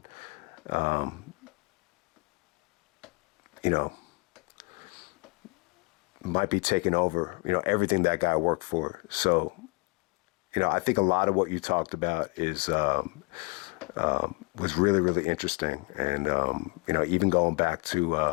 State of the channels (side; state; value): right; quieter; 29.8 dB